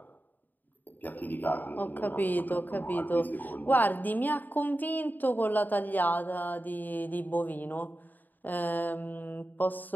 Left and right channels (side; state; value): right; late; 0.087 ms